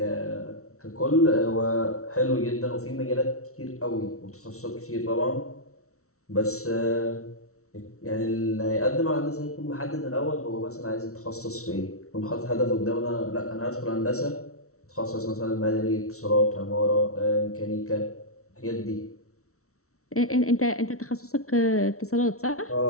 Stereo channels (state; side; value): late; right; 0.63 ms